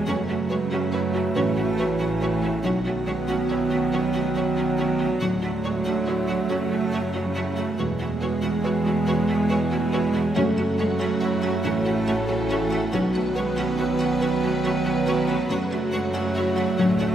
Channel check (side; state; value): both; normal; correlation 0.80